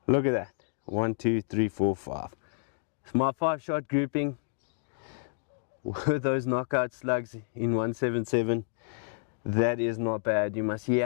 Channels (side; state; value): right; silent; digital silence